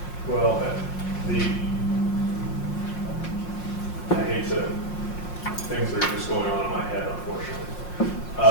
Well, I hate to, things are just going on in my head,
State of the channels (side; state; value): right; late; 5.6 ms